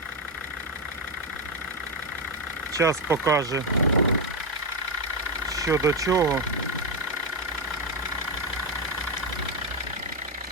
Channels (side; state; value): both; normal; correlation 0.07